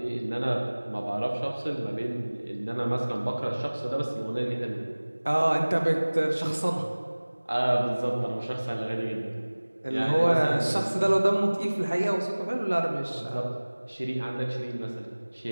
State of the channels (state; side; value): inverted; both; correlation -1.00